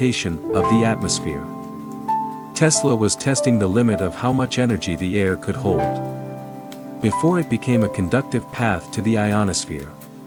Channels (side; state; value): both; identical; correlation 1.00